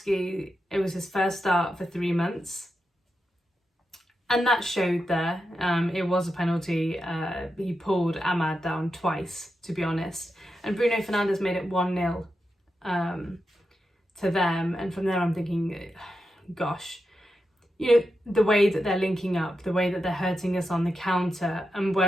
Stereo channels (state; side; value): normal; both; correlation 0.88